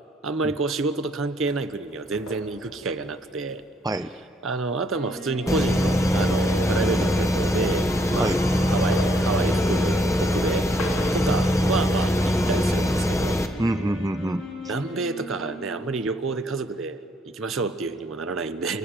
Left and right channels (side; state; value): both; normal; correlation 0.69